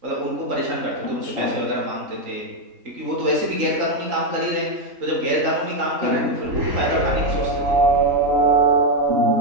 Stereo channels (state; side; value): late; left; 3.8 ms